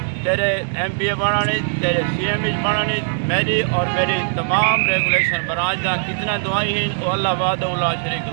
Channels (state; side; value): silent; left; digital silence